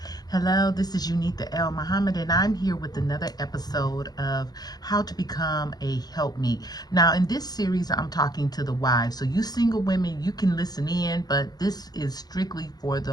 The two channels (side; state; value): right; late; 0.19 ms